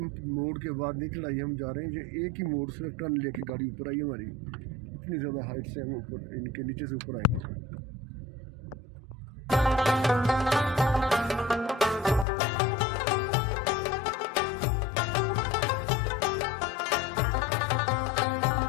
मोड़ के बाद नहीं चढ़ाई हम जा रहे हैं। ये एक ही मोड़ से टर्न लेके गाड़ी ऊपर आई हमारी। इतनी ज़्यादा हाइट से हम ऊपर, इनके नीचे से ऊपर आए।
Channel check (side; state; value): right; drops out; at 12.2 s